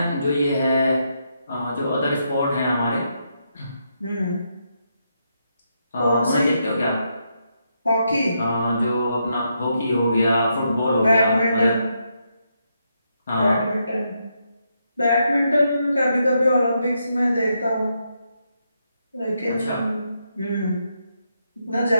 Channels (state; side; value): inverted; both; correlation -0.80